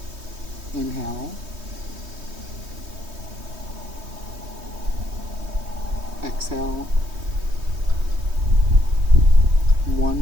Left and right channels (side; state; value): left; late; 3.2 ms